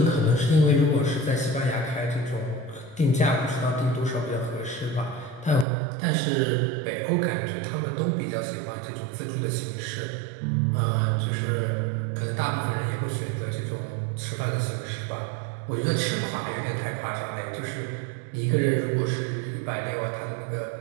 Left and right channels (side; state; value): left; drops out; at 5.7 s